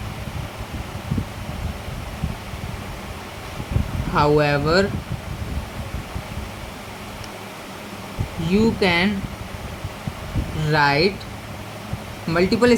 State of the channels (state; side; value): identical; both; correlation 1.00